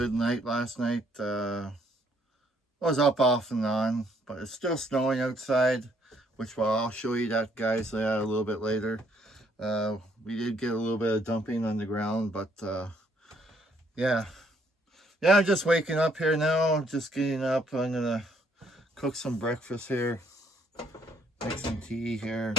night last night. Was up off and on, but it's still snowing outside, which I'll show you that, guys, a little bit later. We did get a little bit of dumping on the ground, but yeah, I'm just waking up here now. Just getting up. I'm gonna cook some breakfast here, make some tea here.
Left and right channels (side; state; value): both; normal; correlation 0.68